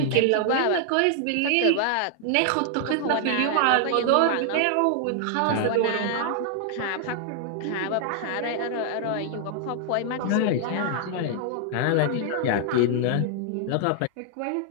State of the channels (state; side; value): different; both; correlation 0.00